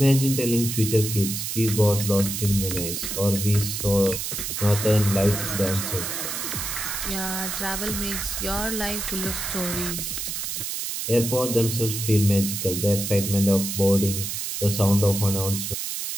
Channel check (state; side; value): noise; right; hiss, 4 dB below the sound